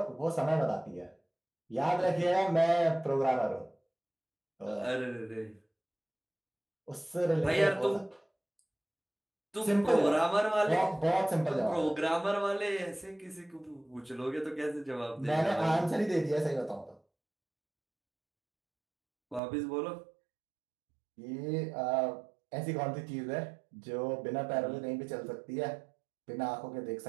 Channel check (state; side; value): drops out; left; at 19.4 s